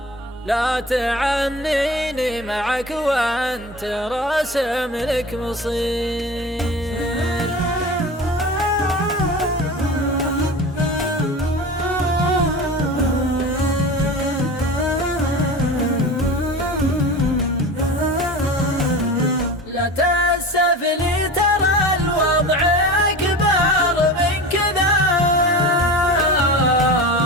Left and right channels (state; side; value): normal; both; correlation 0.32